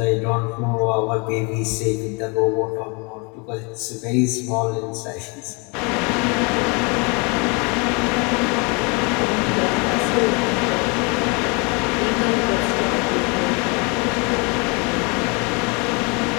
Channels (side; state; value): right; quieter; 30.8 dB